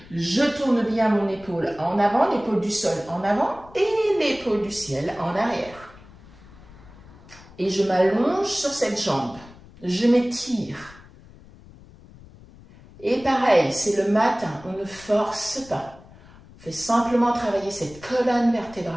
Je tourne bien mon épaule en avant, l'épaule du sol en avant et l'épaule du ciel en arrière. Et je m'allonge sur cette jambe. Je m'étire. Et pareil, c'est le matin, on ne force pas. On fait simplement travailler cette colonne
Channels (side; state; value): left; noise; rumble, 22 dB below the sound